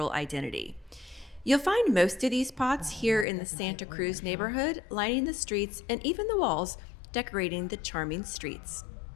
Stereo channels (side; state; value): right; drops out; at 3.2 s